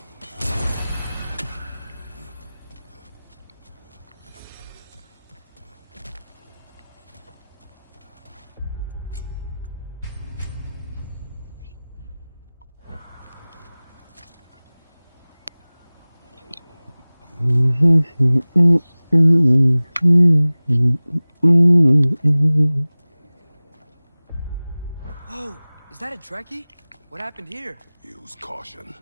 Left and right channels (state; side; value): inverted; both; correlation -0.99